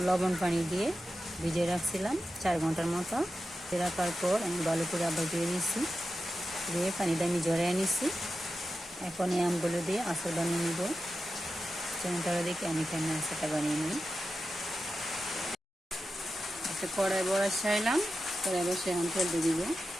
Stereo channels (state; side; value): normal; both; correlation 0.91